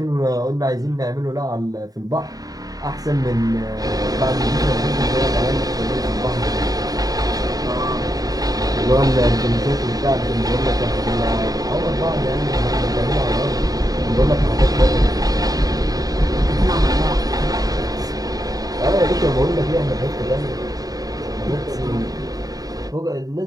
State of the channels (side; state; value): left; late; 0.18 ms